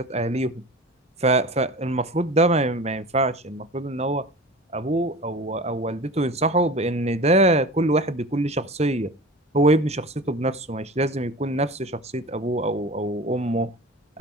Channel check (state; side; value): normal; both; correlation 0.36